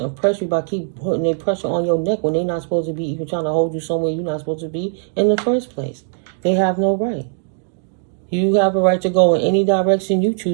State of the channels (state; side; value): silent; left; 66 dB below the other